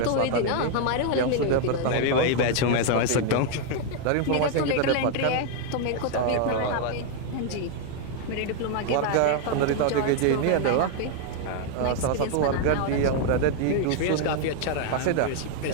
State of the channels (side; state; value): both; different; correlation 0.00